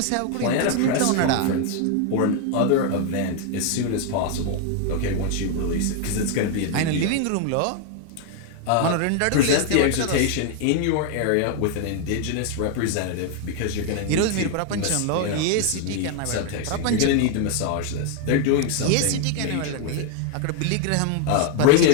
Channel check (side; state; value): both; different; correlation 0.01